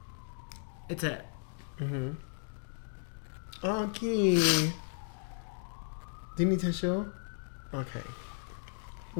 it's it. Mm-hmm. Okay. Do you need tissue? Okay.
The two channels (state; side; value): silent; right; digital silence